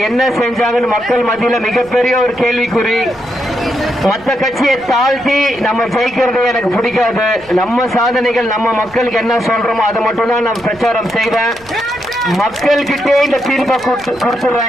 என்ன செஞ்சாங்கன்னு மக்கள் மத்தியில மிகப்பெரிய ஒரு கேள்விக்குறி. மற்ற கட்சியை தாழ்த்தி நம்ம ஜெயிக்கிறதே எனக்கு பிடிக்காது. நம்ம சாதனைகள், நம்ம மக்களுக்கு என்ன சொல்றோமோ அதை மட்டும் தான் நான் பிரச்சாரம் செய்வேன். மக்கள் கிட்டே இந்த தீர்ப்பை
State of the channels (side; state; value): right; noise; rumble, 25 dB below the sound